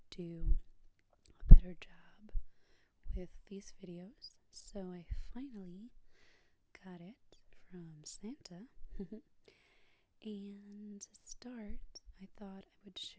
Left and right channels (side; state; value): both; identical; correlation 1.00